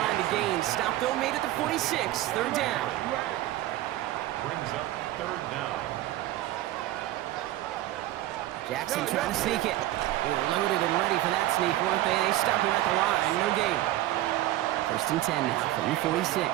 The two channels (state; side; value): quieter; left; 15.2 dB